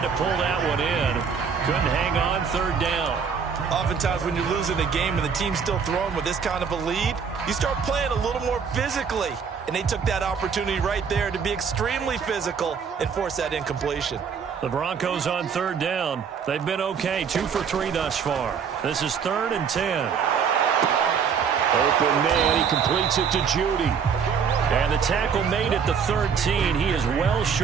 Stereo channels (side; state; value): left; quieter; 6.6 dB